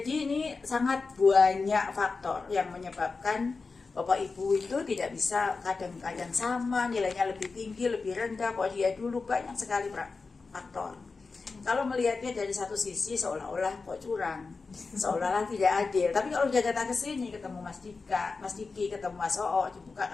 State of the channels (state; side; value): quieter; right; 4.3 dB